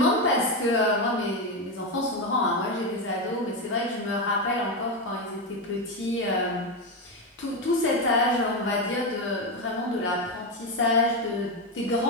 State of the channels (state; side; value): normal; both; correlation 0.11